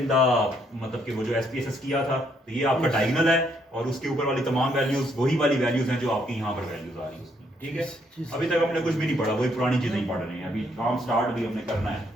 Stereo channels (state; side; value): normal; both; correlation 0.71